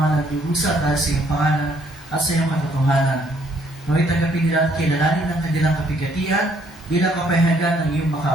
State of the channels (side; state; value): both; normal; correlation 0.66